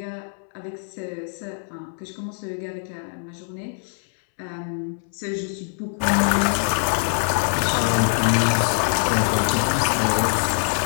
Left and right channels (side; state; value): right; silent; 63 dB below the other